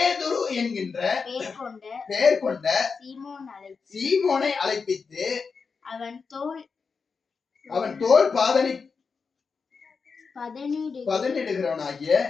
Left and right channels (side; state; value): right; quieter; 5.2 dB